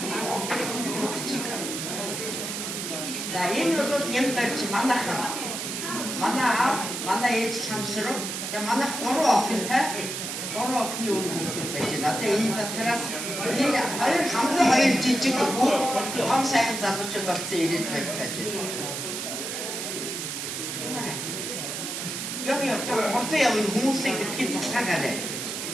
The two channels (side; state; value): right; noise; hiss, 4 dB below the sound